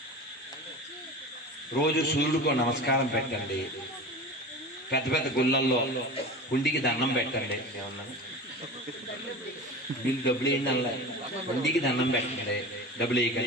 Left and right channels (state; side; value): normal; both; correlation 0.32